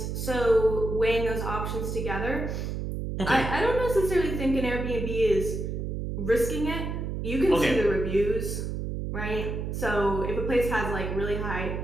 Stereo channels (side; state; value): right; noise; hum, 3 dB below the sound